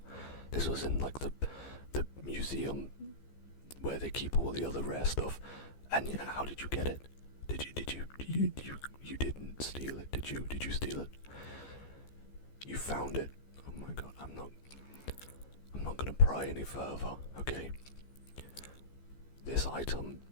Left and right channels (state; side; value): late; right; 15 ms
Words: This was in like the museum where they keep all the other rare stuff. And yeah, how did you get it? You didn't steal it, did you? Did you steal it? You found it. Oh my god, I'm not gonna pry any further, okay? This item